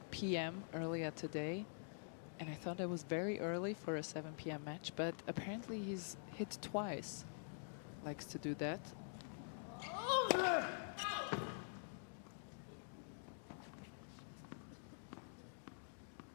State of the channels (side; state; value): right; silent; digital silence